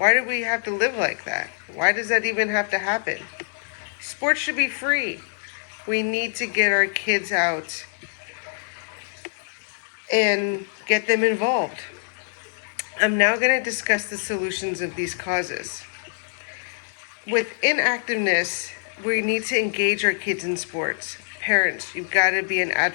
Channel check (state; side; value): silent; right; digital silence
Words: do we have to live like that? Why does that even have to happen? Sports should be free. We need to get our kids out and get them involved. I'm now going to discuss the solutions of these causes. With inactiveness, we need to engage our kids in sports. Parents, you've got to be an